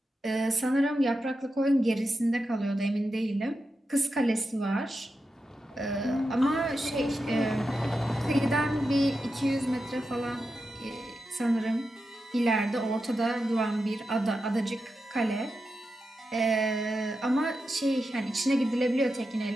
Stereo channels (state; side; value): normal; both; correlation 0.89